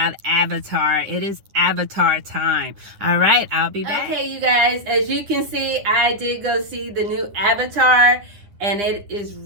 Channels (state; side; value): late; left; 9.8 ms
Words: Avatar. It is Avatar time. All right, I'll be back. Okay, you guys, as you can see, I did go see the new Avatar, and it is